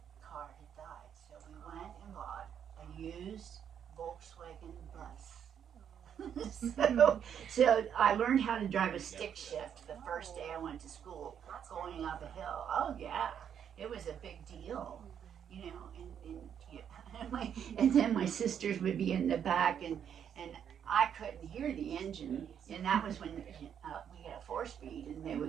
car had died. So we went and bought a used Volkswagen bus. so I learned how to drive a stick shift the first day I went to school, going up a hill. Oh yeah, it was a big deal, and then my sisters would be in the back, and I couldn't hear the engine, and that was when we had a 4-speed, and they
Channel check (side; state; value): left; quieter; 8.6 dB